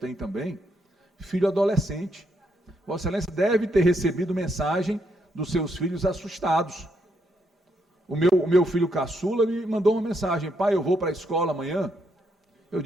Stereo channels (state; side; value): normal; both; correlation 0.76